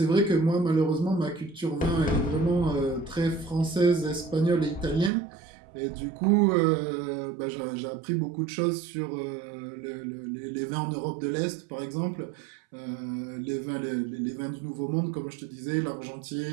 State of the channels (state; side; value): drops out; left; at 5.1 s